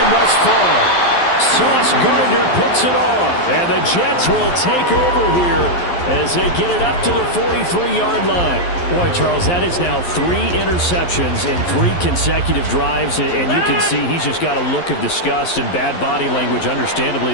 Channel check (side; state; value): right; late; 11 ms